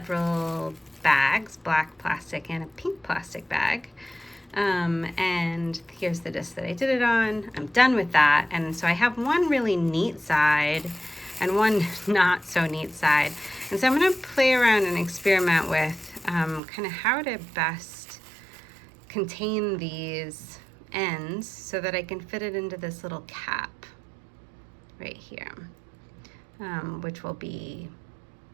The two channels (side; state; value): left; drops out; at 16.6 s